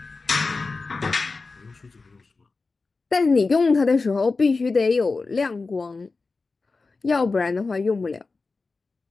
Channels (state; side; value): quieter; right; 4.0 dB